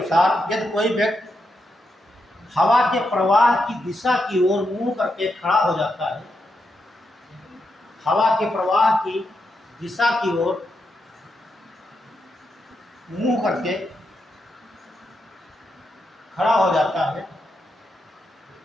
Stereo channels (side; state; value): both; normal; correlation 0.84